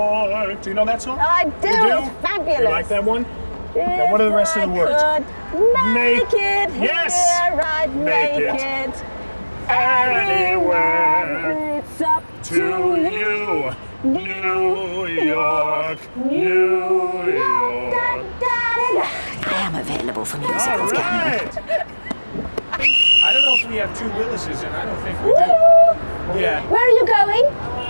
Do you know that song? I do. You do? It's fabulous. You like that one? Now, what are the rest of the words? Make it Yes. here, I'd Make make it it anywhere. It's up To you, New York, New York. I am available for musicals, All Cameron. right. I don't know if we have 2 Willises, and I don't think we do. Yeah. Where are you going?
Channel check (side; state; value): both; inverted; correlation -1.00